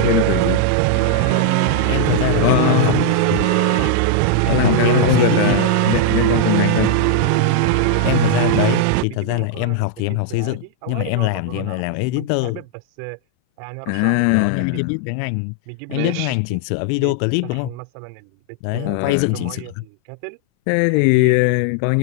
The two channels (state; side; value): different; both; correlation 0.00